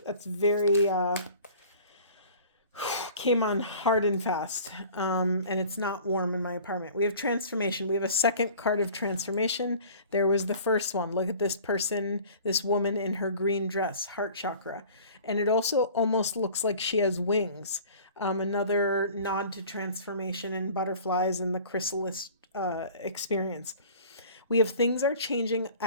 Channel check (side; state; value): both; inverted; correlation -0.46